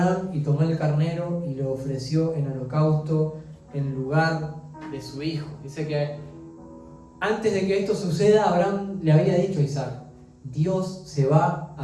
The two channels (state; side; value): identical; both; correlation 1.00